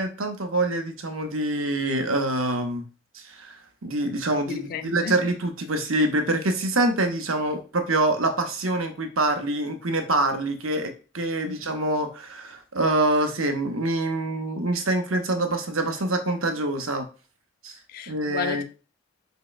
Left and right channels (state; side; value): normal; both; correlation 0.08